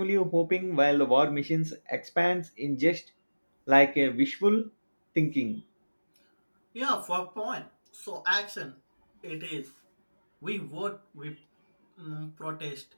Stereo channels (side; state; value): both; inverted; correlation -1.00